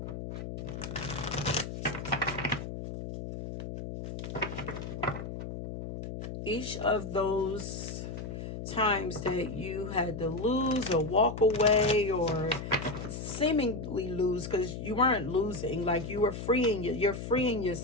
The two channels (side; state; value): left; noise; hum, 7 dB below the sound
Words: Each of those times that you had to lose or walk away or seemingly lose, because you weren't losing, like you were you're freeing